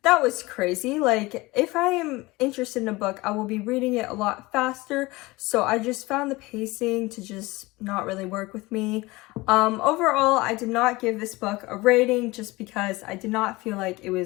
that was crazy. If I am interested in a book, I will be reading it a lot faster. So I just found the pacing to just not really work with me. Overall, I did not give this book a rating, just because I did not feel like it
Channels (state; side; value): quieter; right; 21.6 dB